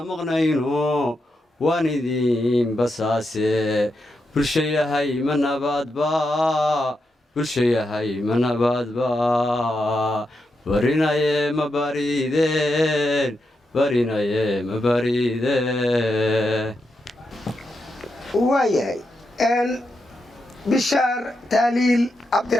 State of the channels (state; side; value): normal; both; correlation 0.85